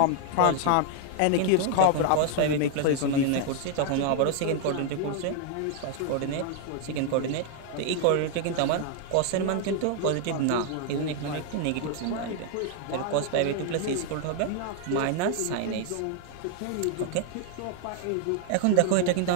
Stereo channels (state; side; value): different; both; correlation 0.00